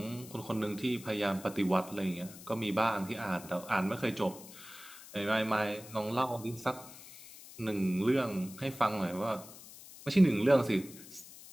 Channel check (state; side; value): noise; left; hiss, 17 dB below the sound